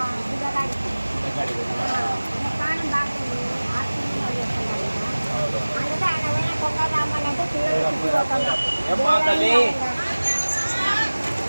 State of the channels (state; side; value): inverted; both; correlation -1.00